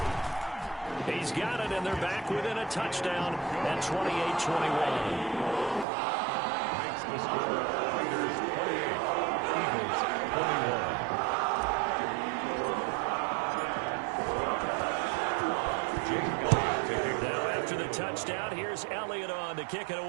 He's got it, and they're back within a touchdown at 28-21. Makes the score Raiders 28, Eagles 21. Now after the touchdown, here's Elliott on to kick it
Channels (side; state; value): left; drops out; at 5.9 s